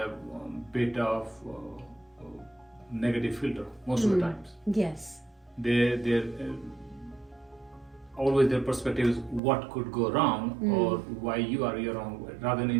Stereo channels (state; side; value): drops out; left; at 9.4 s